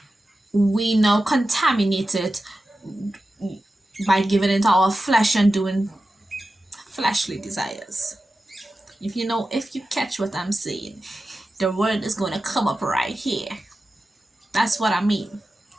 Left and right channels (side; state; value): both; normal; correlation 0.93